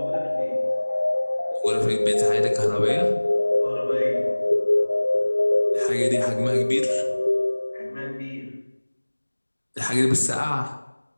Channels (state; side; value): inverted; both; correlation -1.00